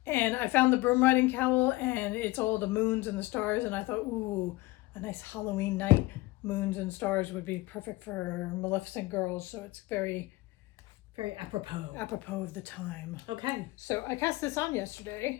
And I found the broom riding cowl, and it's all the moons and the stars, and I thought, ooh, a nice Halloween night, moons and stars would be perfect for Maleficent girls. So it's very, very apropos of the time. Okay. So I cast this on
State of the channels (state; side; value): quieter; right; 20.4 dB